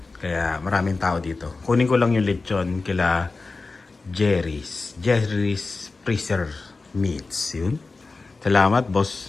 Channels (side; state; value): right; quieter; 3.8 dB